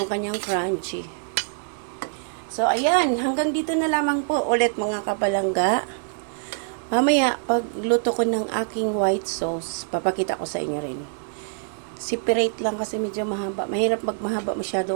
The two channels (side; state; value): left; silent; digital silence